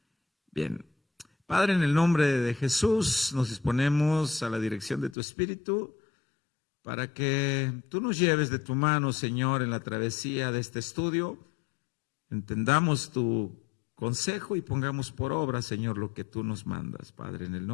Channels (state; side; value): drops out; right; at 5.2 s